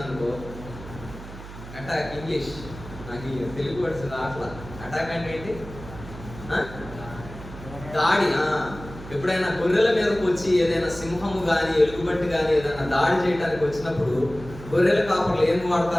అటాక్ ఇంగ్లీష్ నాకు తెలుగు వర్డ్స్ రాట్లా. అటాక్ అంటే ఏంటి? దాడి. ఎప్పుడైనా గొర్రెల మీదకి వచ్చి ఏదైనా సింహము కానీ ఎలుగుబంటి కానీ ఏదైనా దాడి చేయడానికి వచ్చినప్పుడు గొర్రెల కాపర్లు ఏం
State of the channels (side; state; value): right; noise; hum, 14 dB below the sound